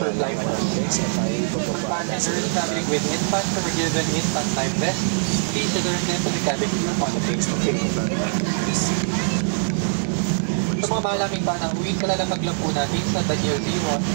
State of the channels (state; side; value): silent; left; digital silence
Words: lang konti guys at tayo ipapaba na sa aeroplano. with instant forgiven, instant time vest, each other time to the cabin. Bumupings to aeroplano natin guys. Sa mga malaking banang uwing ka lang ng maglampo natin sa Daniel Limon,